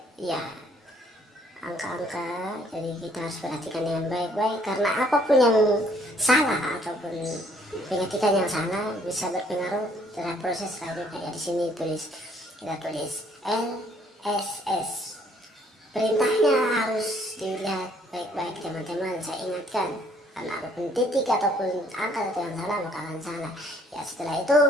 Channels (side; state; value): both; normal; correlation 0.63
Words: ya angka-angka, jadi kita harus perhatikan dengan baik-baik, karena apapun yang salah ataupun pengetikan yang salah bisa berpengaruh terhadap proses selanjutnya. Ya, di sini kita tulis LSS. Perintahnya harus dilihat baik-baik teman-teman. Saya ingatkan, karena apapun titik ataupun angka atau yang salah maka akan salah. Ya, setelah itu